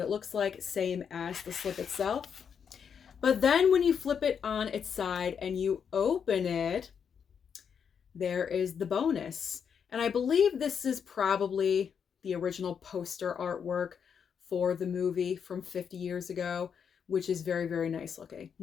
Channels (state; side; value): quieter; right; 7.2 dB